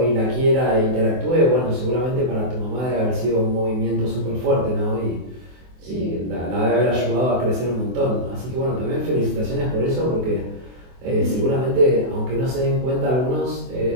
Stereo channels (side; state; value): left; late; 24 ms